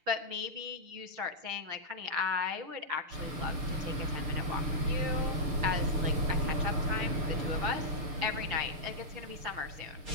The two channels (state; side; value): late; left; 6.6 ms